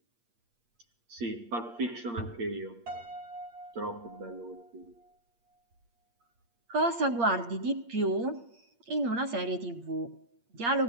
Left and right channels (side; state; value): left; late; 8.6 ms